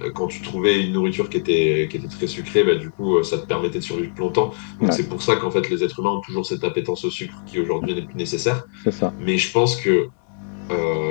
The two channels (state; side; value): silent; right; digital silence